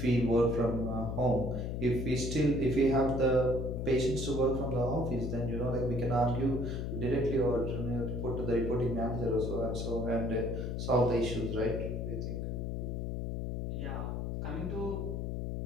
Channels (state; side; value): noise; left; hum, 3 dB below the sound